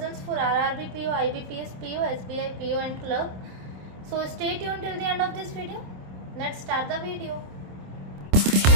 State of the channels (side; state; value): left; late; 27 ms